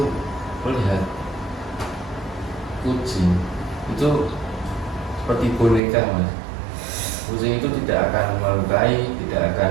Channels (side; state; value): left; drops out; at 5.8 s